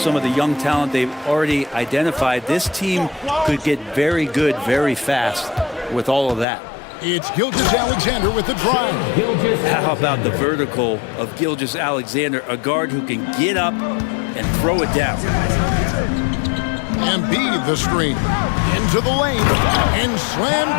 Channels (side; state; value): right; drops out; at 6.5 s